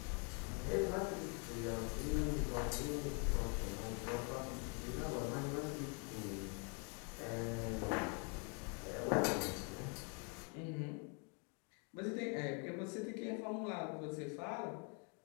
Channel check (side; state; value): right; quieter; 35.8 dB